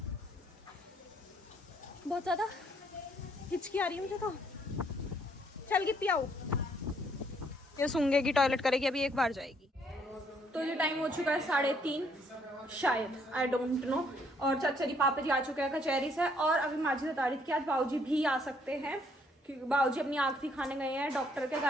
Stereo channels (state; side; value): normal; both; correlation 0.67